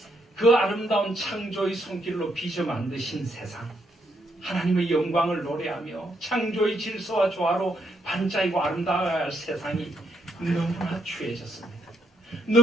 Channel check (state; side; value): normal; both; correlation 0.75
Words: 그 아름다운 창조의 손길로 빚어 만드신 세상, 하나님의 영광을 노래하며 창조의 질서와 조화로 반짝이고 아름다워야 할 세상이 너무나 추해졌습니다.